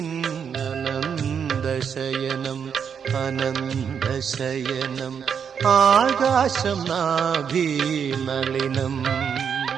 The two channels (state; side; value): quieter; left; 7.2 dB